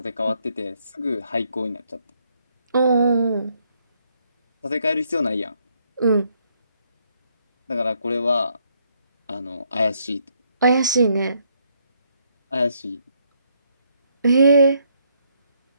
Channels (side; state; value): both; inverted; correlation -0.72